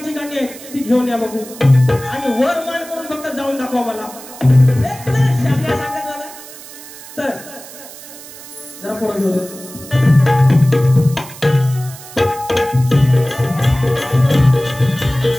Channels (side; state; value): right; noise; hiss, 16 dB below the sound